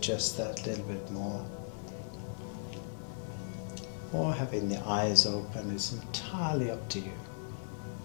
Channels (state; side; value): silent; right; 53 dB below the other